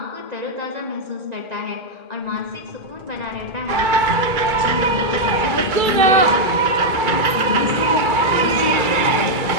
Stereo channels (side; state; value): left; late; 2.3 ms